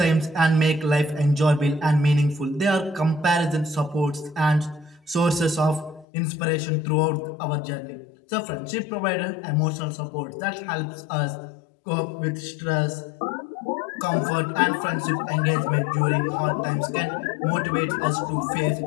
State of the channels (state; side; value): drops out; right; at 6.1 s